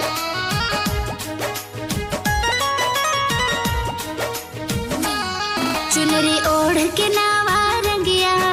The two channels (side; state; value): both; identical; correlation 1.00